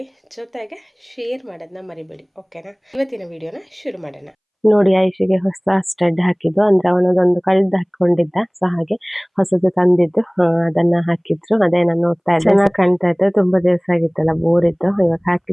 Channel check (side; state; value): both; identical; correlation 1.00